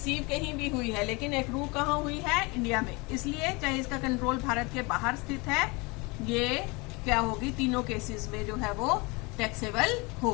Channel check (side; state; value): right; quieter; 26.9 dB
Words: कहीं भी हुई है, लेकिन एक्रू कहाँ हुई है, इंडिया में। इसलिए चाहे इसका कंट्रोल भारत के बाहर स्थित है, ये क्या होगी, तीनों केसेस में जो है वो टैक्सेबल